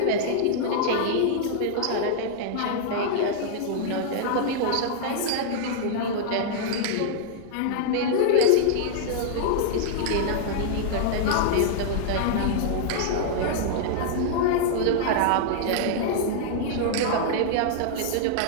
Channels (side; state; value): both; different; correlation -0.01